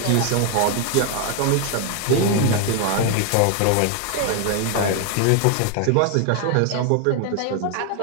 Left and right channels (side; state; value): both; different; correlation 0.00